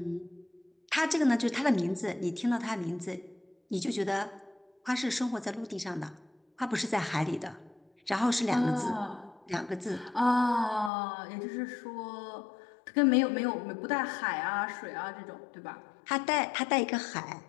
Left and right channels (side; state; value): right; drops out; at 10.9 s